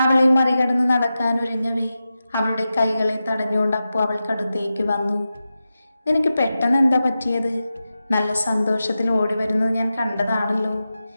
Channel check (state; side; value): inverted; both; correlation -0.92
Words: അവളെ മറികടന്ന് നടക്കാനൊരുങ്ങവേ അവളുടെ കൈകളെ തടഞ്ഞുകൊണ്ട് അപ്പു അവൾക്കടുത്തേക്ക് വന്നു. നിനക്ക് പെട്ടെന്ന് എന്താ പറ്റിയത്? നല്ല സന്തോഷത്തിൽ ഓടി വരുന്നത് ഞാൻ കണ്ടതാണല്ലോ.